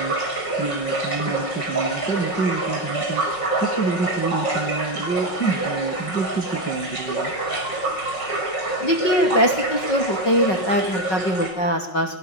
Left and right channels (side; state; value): right; late; 5.4 ms